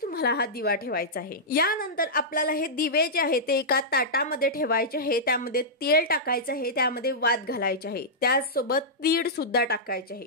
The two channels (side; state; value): both; normal; correlation -0.12